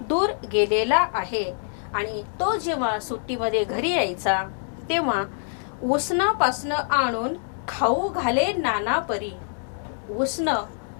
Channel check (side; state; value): right; silent; 62 dB below the other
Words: दूर गेलेला आहे, आणि तो जेव्हा सुट्टीमध्ये घरी यायचा तेव्हा उसनं पासनं आणून खाऊ घाले नाना परी. उसनं